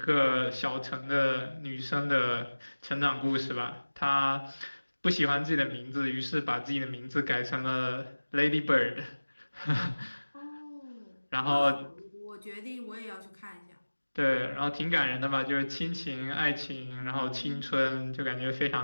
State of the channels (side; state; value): both; inverted; correlation -1.00